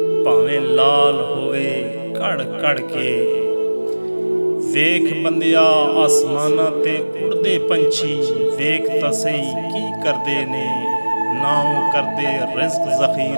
भावें लाल होवे कड़ कड़ के। वेख बंदिया आसमाना ते उड़दे पंछी, वेख तां सही की करदे ने। ना ओ करदे रिज़्क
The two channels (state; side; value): inverted; both; correlation -1.00